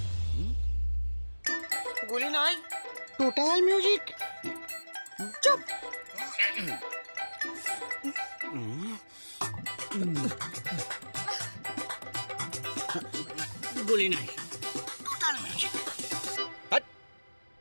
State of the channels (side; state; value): both; inverted; correlation -1.00